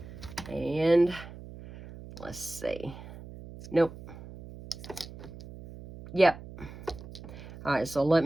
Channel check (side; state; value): right; noise; hum, 14 dB below the sound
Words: And let's see. Nope. Yep. All right, so let